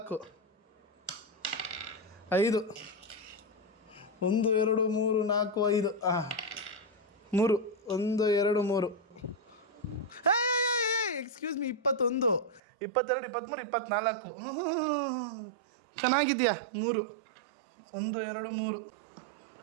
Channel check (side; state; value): left; drops out; at 12.6 s